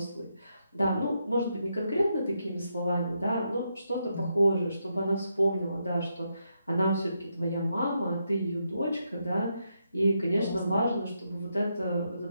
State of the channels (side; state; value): both; inverted; correlation -0.81